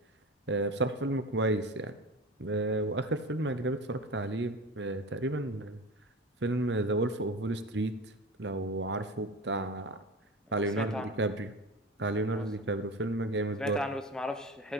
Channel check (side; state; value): both; normal; correlation 0.30